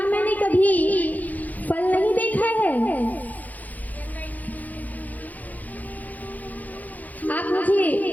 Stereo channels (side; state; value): right; late; 0.080 ms